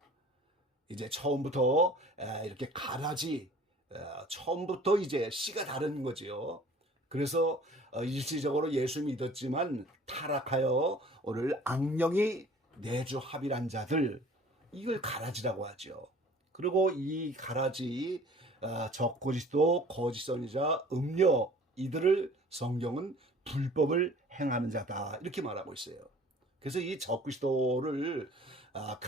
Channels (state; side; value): normal; both; correlation 0.49